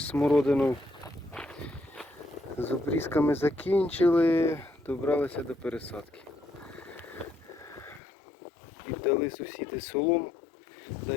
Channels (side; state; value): right; drops out; at 8.0 s